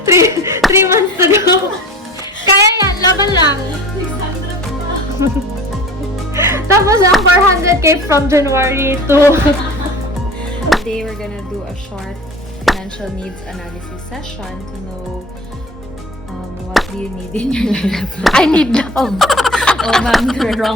3 months to go. Kaya yan, laban lang. Tapos ang 400k from January to... Today we're gonna do a short financial needs analysis session to know what do you need in your life. I need love. Oh ma'am, you're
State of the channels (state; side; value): normal; both; correlation 0.40